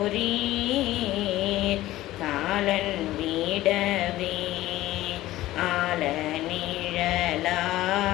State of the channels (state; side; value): quieter; right; 15.9 dB